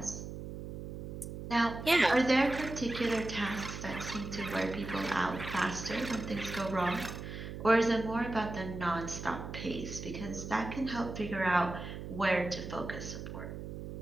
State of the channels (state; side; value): noise; right; hum, 8 dB below the sound